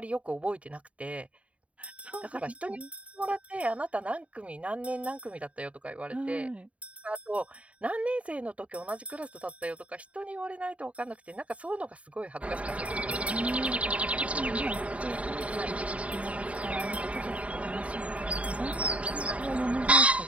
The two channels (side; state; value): left; late; 0.065 ms